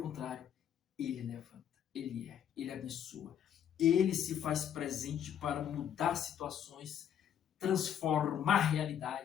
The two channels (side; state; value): right; quieter; 9.4 dB